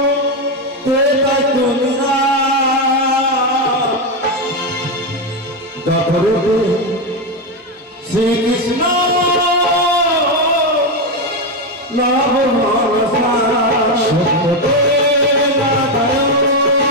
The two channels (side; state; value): both; normal; correlation 0.08